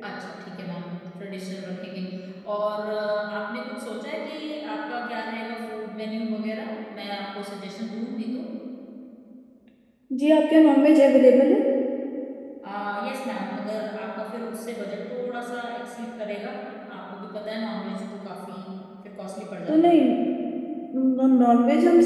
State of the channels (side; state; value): both; identical; correlation 1.00